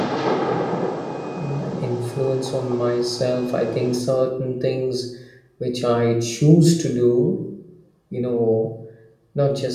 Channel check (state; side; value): identical; both; correlation 1.00